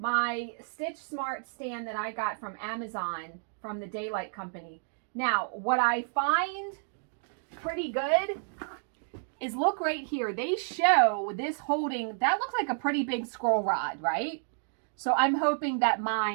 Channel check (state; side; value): silent; left; digital silence